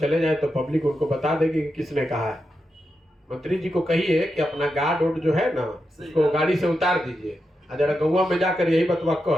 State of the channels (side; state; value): both; normal; correlation 0.87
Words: जाए तो पब्लिक उनको बता देगी कि किसने कहा है। मंत्री जी को कहिए कि अपना गार्ड ओड जो है ना, उसको गाड़ी से उतार दीजिए और जरा गौवा में जाकर यही बतवा